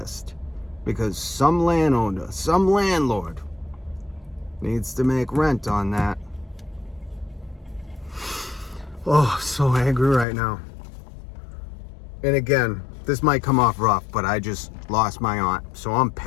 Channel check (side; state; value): right; drops out; at 10.2 s